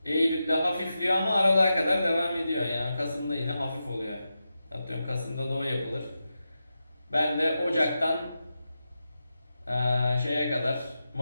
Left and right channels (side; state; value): both; inverted; correlation -0.90